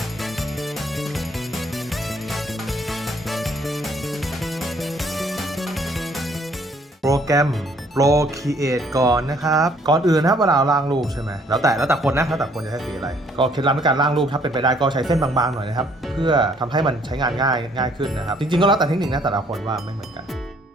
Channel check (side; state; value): both; normal; correlation 0.63